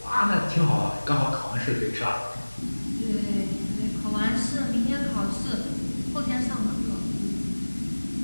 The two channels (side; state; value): both; inverted; correlation -1.00